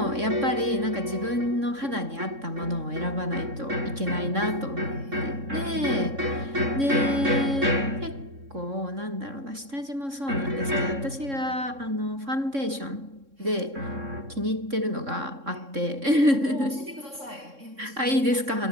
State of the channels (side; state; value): left; late; 3.6 ms